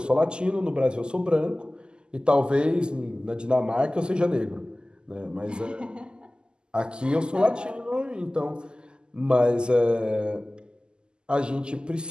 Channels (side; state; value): left; late; 0.047 ms